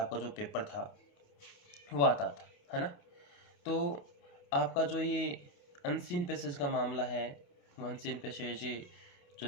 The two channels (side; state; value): right; late; 28 ms